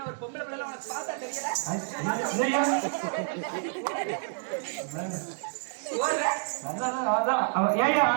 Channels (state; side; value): silent; left; digital silence